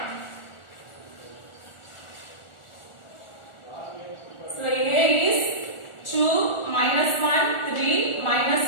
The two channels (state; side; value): late; right; 1.4 ms